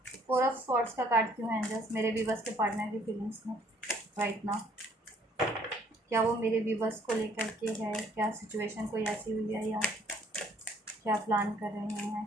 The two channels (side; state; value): both; normal; correlation 0.62